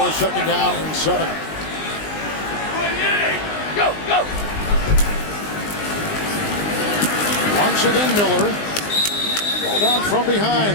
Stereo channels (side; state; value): right; late; 19 ms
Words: 2nd down and 7. Go, go. Once again, Miller. Ball down from